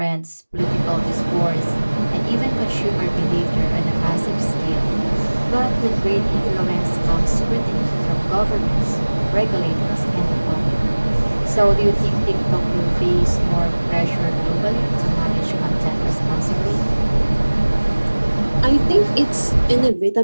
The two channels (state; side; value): inverted; both; correlation -1.00